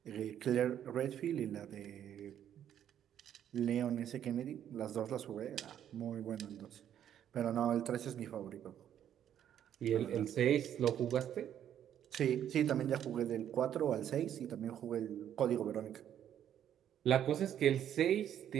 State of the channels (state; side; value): quieter; left; 10.1 dB